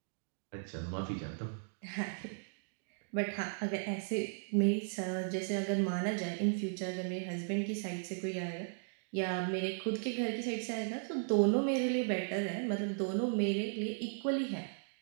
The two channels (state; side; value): silent; left; digital silence